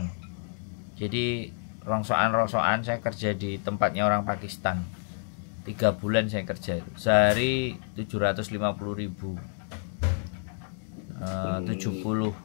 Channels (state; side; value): silent; right; 59 dB below the other